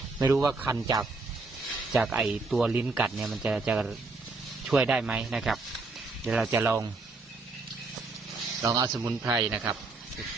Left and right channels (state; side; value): quieter; left; 3.7 dB